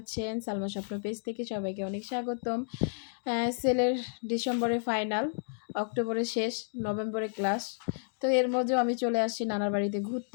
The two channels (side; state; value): right; silent; digital silence